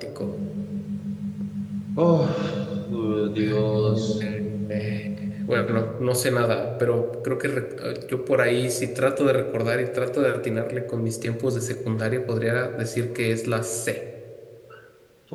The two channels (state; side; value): identical; both; correlation 1.00